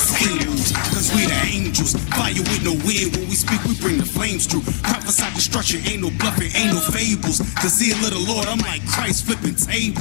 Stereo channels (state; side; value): silent; right; 65 dB below the other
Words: same moves, cause we the angels. Fire with no wind, when we speak we bring the flames through. Prophesy destruction, ain't no bluffing, ain't no fables. The zeal of the Lord, I'm like Christ flipping